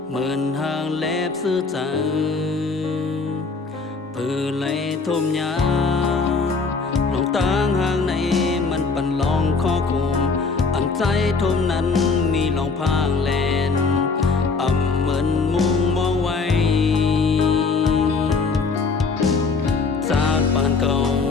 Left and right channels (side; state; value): right; quieter; 4.4 dB